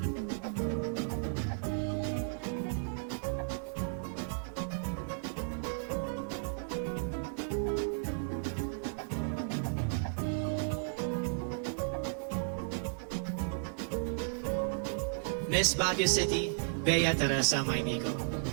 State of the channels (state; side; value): silent; left; digital silence